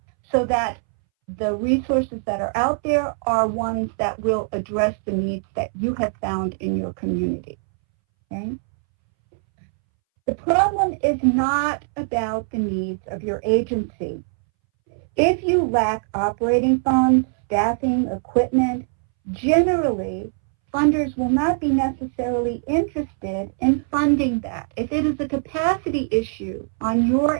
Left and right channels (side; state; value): left; silent; 63 dB below the other